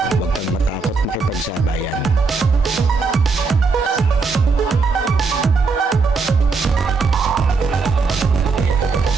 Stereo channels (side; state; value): left; quieter; 4.4 dB